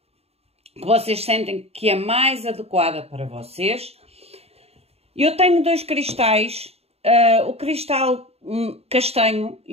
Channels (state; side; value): late; left; 0.30 ms